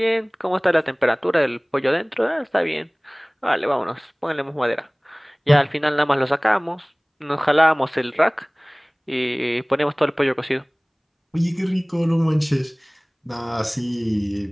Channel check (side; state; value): both; identical; correlation 1.00